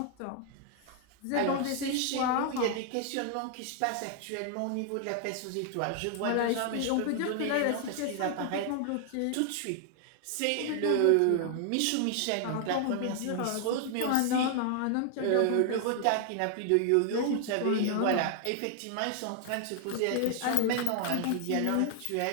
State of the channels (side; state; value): both; different; correlation 0.00